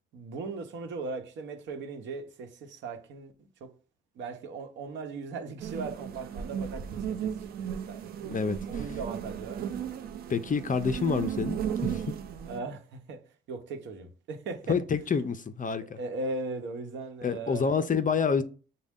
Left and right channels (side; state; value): both; normal; correlation 0.39